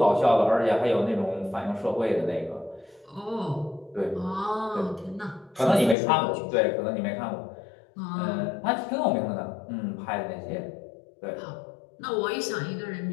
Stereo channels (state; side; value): drops out; right; at 6.0 s